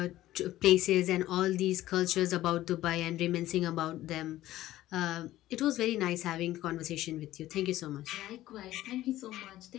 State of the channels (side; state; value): right; quieter; 14.9 dB